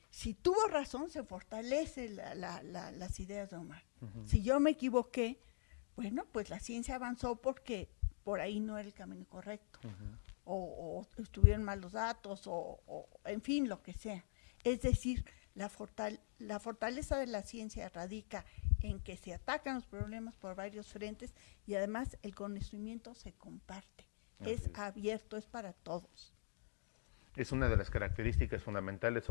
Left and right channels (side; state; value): right; silent; digital silence